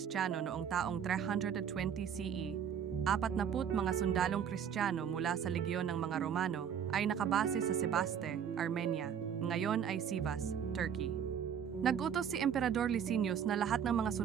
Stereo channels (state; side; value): quieter; left; 8.2 dB